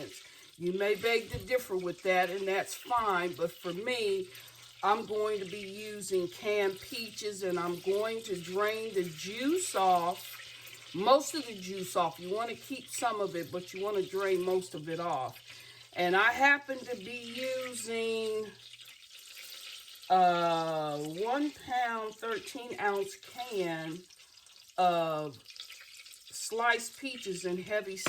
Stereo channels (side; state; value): both; identical; correlation 1.00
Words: You may beg to differ with that, and that's fine, but for me, I'm going to be using canned peaches, and I'm going to drain the juice off. Most of the juice off. You want to keep some of it, but you want to drain most of it off. And I happen to be using 1 pound, 13-ounce can of sliced peaches and heavy